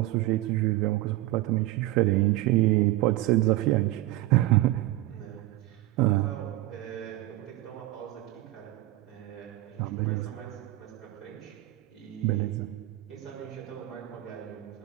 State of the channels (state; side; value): quieter; left; 17.0 dB